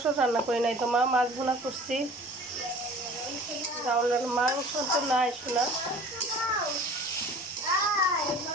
রান্না করি নাই তো মা, মাছ ভুনা করছি। ডাউল মাংস তো নাই শোনা।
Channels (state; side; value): normal; both; correlation 0.45